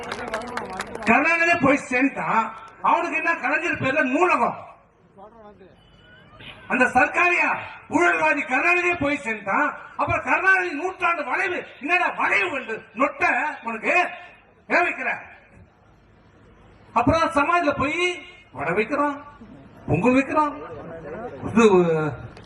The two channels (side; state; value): both; identical; correlation 1.00